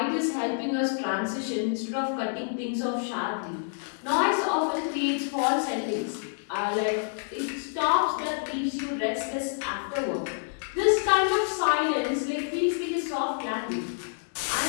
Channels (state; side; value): silent; right; 59 dB below the other